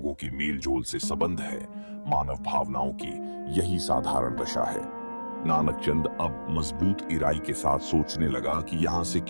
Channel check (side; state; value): both; inverted; correlation -1.00